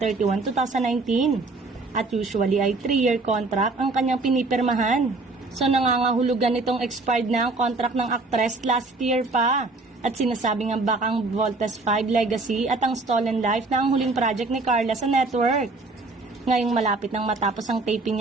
2019. At usually ay 3-year contract ang kanyang pinipirmahan. So nangangahulugan itong expired na ang contract ng actress last year pa. At sinasabi nga baka ang Voltes 5 Legacy at ang Stolen Life na ang huling project ni Carla sa network. Ngayong malapit nang matapos ang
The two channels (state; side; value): quieter; left; 3.4 dB